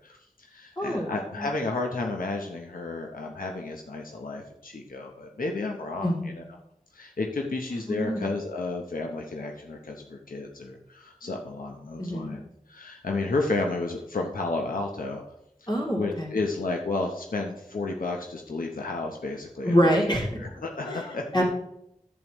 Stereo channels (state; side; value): normal; both; correlation 0.73